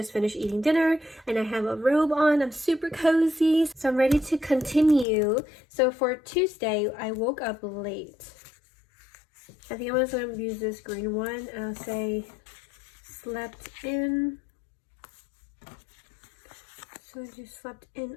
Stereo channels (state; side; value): drops out; right; at 5.1 s